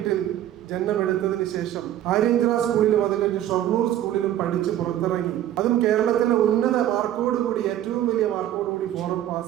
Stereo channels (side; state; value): left; quieter; 12.1 dB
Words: ജന്മമെടുത്തതിന് ശേഷം ആര്യഞ്ചിറ സ്കൂളിലും അത് കഴിഞ്ഞ് ഷൊർണൂർ സ്കൂളിലും പഠിച്ച് പുറത്തിറങ്ങി. അതും കേരളത്തിലെ ഉന്നത മാർക്കോടുകൂടി ഏറ്റവും വലിയ മാർക്കോടുകൂടി ഫോറം